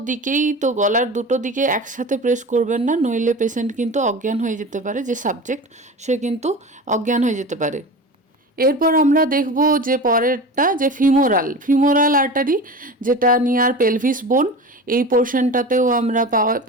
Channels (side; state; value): both; normal; correlation 0.32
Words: দিকেই, তো গলার দুটো দিকে একসাথে প্রেস করবেন না, নইলে পেশেন্ট কিন্তু অজ্ঞান হয়ে যেতে পারে, যে সাবজেক্ট সে কিন্তু অজ্ঞান হয়ে যেতে পারে। এরপর আমরা দেখব যে পরেরটা, যে ফিমোরাল আর্টারি, যেটা নিয়ার পেলভিস বোন, এই পোর্শনটাতেও আমরা